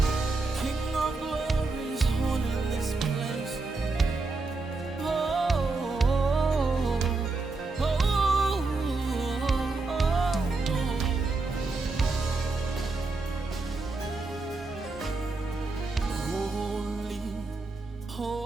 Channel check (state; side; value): quieter; left; 3.6 dB